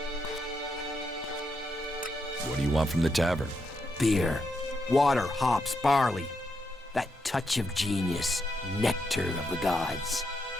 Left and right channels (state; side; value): normal; both; correlation 0.82